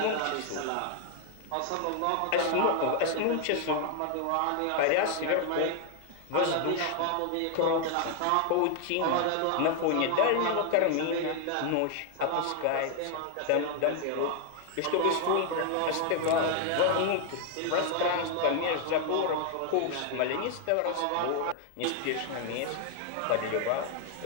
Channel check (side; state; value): both; different; correlation 0.00